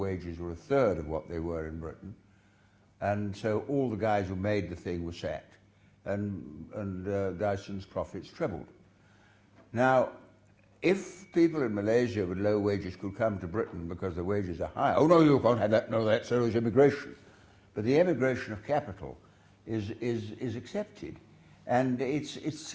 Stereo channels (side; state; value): both; identical; correlation 1.00